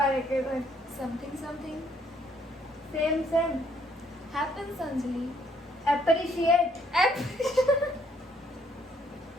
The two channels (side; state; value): both; normal; correlation 0.67